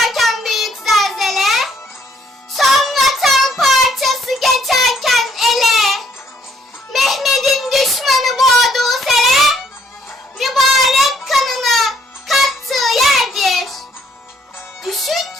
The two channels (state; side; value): normal; both; correlation 0.66